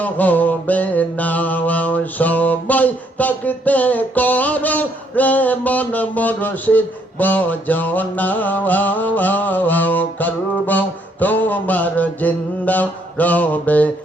হবে না। সময় থাকতে করো রে মন মুর্শিদ বজনা। কালব তোমার জিন্দা রবে,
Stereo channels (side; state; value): both; normal; correlation 0.70